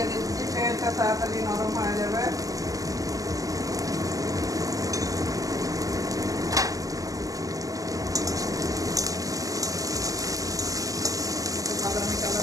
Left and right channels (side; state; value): left; late; 0.17 ms